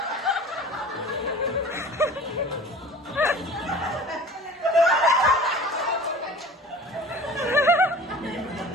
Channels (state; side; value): normal; both; correlation 0.42